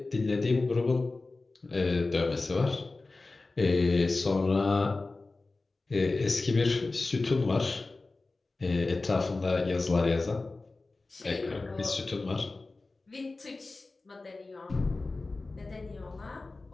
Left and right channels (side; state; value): right; quieter; 3.4 dB